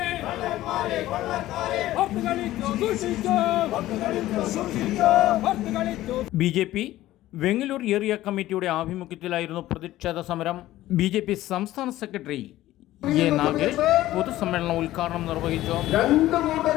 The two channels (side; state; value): right; quieter; 15.2 dB